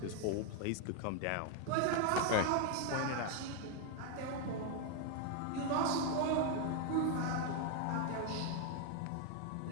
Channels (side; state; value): both; different; correlation 0.01